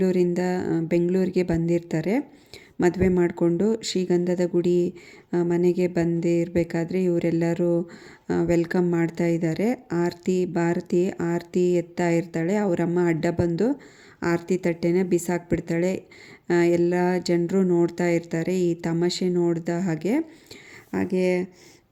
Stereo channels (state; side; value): identical; both; correlation 1.00